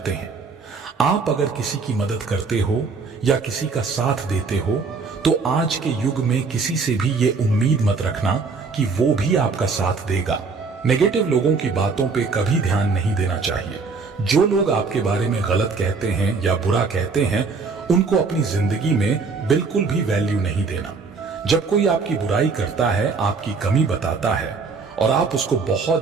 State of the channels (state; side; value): quieter; left; 4.6 dB